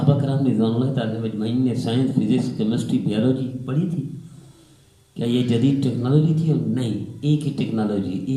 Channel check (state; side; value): identical; both; correlation 1.00